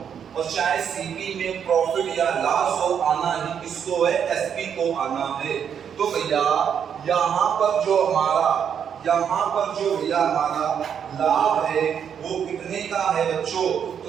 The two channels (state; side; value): quieter; left; 8.0 dB